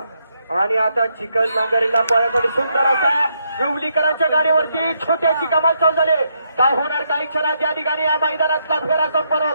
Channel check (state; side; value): inverted; both; correlation -0.78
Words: आणि आता चिकन नांगरीला पळण्यासाठी सुंदर असा विवलीकरांच्या गाडीवरती छोट्याची कमाल चालू झाली. काय होणार काही क्षणात या ठिकाणी या मैदानातला फेरा संपन्न